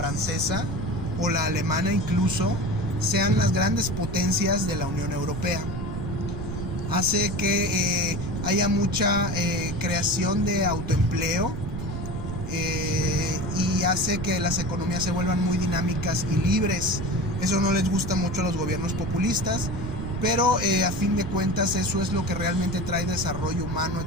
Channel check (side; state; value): right; noise; rumble, 6 dB below the sound